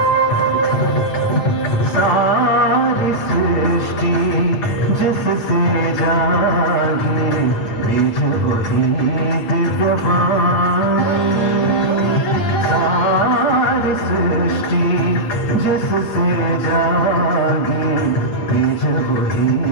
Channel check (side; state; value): right; late; 9.4 ms